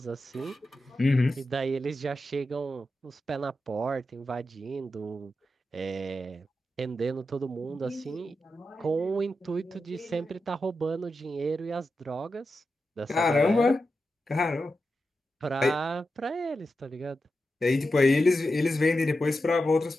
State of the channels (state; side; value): normal; both; correlation 0.89